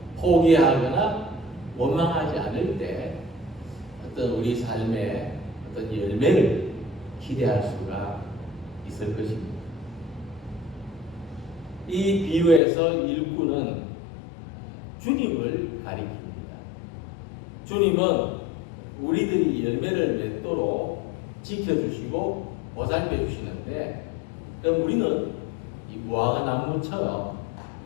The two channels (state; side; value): drops out; right; at 12.6 s